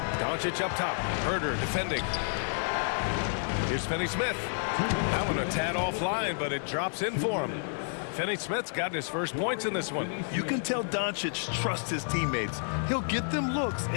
Doncic up top. Herder defending. Here's Finney-Smith. That one a tad offline, but it drops in for him. Finney-Smith's gotten his first points in this one. You can tell Doncic trusts his teammates. He'll get them looks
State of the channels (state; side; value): silent; right; digital silence